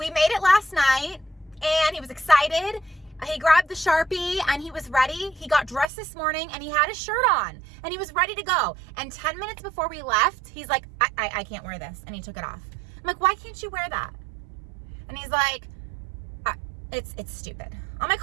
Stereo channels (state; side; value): drops out; left; at 5.9 s